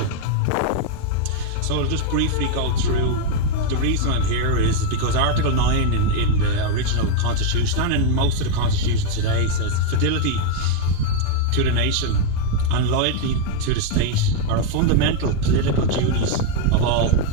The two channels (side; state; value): both; different; correlation 0.00